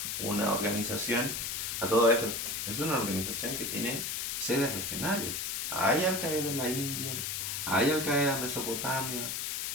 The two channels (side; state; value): left; noise; hiss, 2 dB below the sound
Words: una organización. A todo esto, es una organización que tiene sedes regionales. Hay Al-Qaeda en la India, hay Al-Qaeda en Mesopotamia,